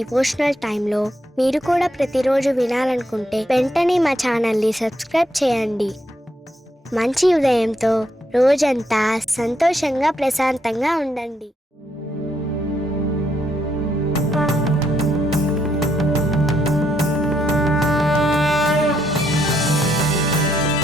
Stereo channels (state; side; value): normal; both; correlation 0.76